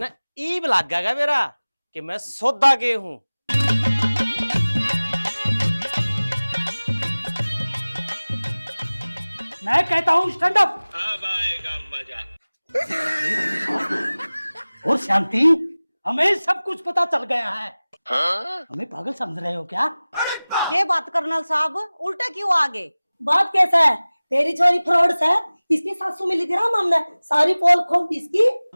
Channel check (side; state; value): both; inverted; correlation -0.99